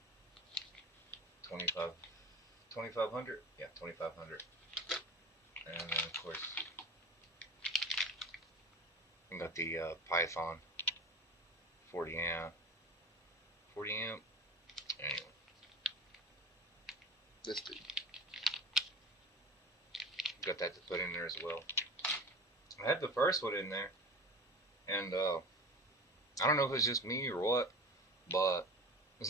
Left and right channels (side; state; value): both; normal; correlation 0.34